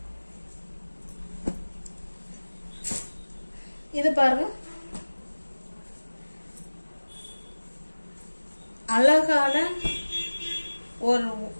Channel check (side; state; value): both; inverted; correlation -1.00